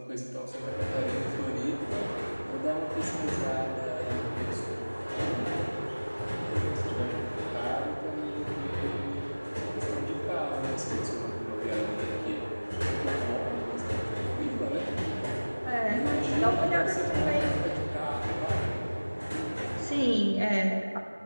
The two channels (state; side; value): inverted; both; correlation -1.00